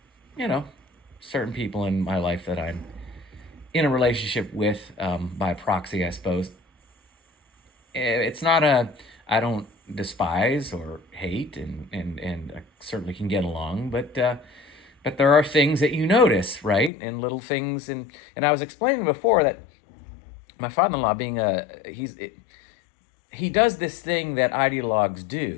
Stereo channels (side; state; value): right; drops out; at 16.9 s